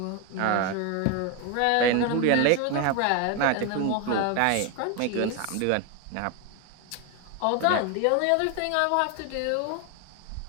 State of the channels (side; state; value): both; different; correlation 0.01